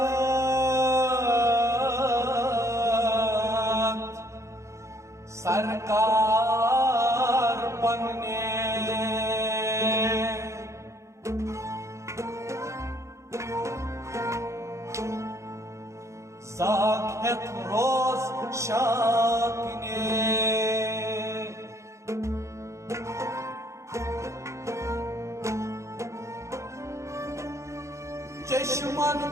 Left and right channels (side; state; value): left; late; 0.14 ms